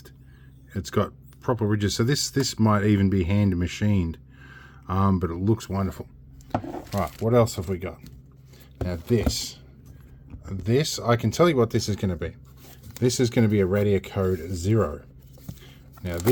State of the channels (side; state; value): both; identical; correlation 1.00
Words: It's got proper ridges, so this might even be hand machined, but it looks wonderful. Right, what else have we got? Now this, I can tell you what this is going to be. This is going to be a Radio Code 0. Now